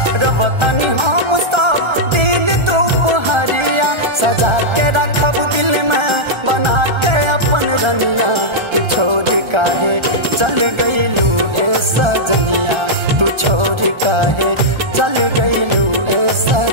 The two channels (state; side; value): late; left; 1.3 ms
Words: रवतनी हम सब दिन दोपहरिया, सजा के रखब दिल में बना के अपन रनिया। तू छोड़ काहे चल गइलू ए सजनिया, तू छोड़ काहे चल गइलू ए